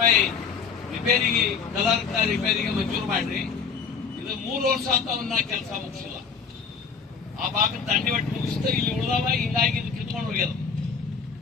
ರಿಪೇರಿಗೆ, ಕಲರ್ ರಿಪೇರಿಗೆ ಮಂಜೂರು ಮಾಡ್ರಿ. ಇದು 3 ವರ್ಷ ಅಂತ ಅವನ್ನ ಕೆಲಸ ಮುಗಿಸಿಲ್ಲ. ಆ ಭಾಗದ ದಂಡಿ ಒಟ್ಟು ಮುಗಿಸ್ತಾ ಇಲ್ಲಿ ಉಳಿದವ, ಹಿಂಗಾಗಿ ಇದು ಕಿತ್ಕೊಂಡು ಹೋಗ್ಯದ.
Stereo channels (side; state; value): right; quieter; 5.8 dB